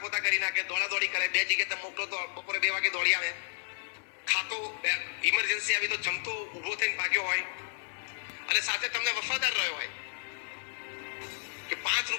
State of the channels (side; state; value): right; silent; digital silence